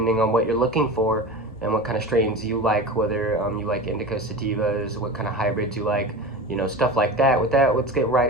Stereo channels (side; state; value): both; normal; correlation 0.30